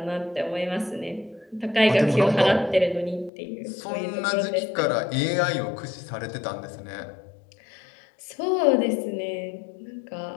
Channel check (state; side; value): drops out; right; at 3.3 s